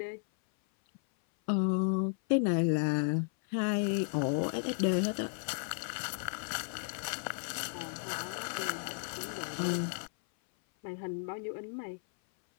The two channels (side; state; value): right; silent; 55 dB below the other